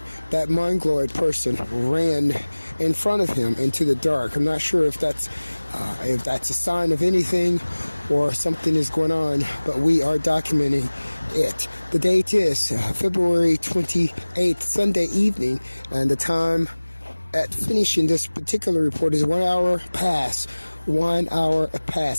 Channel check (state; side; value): inverted; both; correlation -1.00